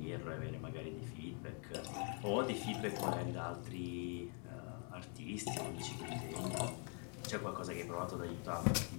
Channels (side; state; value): right; quieter; 37.9 dB